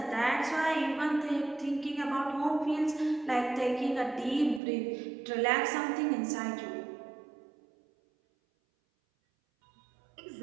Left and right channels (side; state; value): left; drops out; at 4.6 s